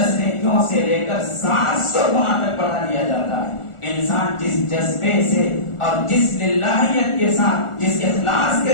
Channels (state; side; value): late; right; 1.4 ms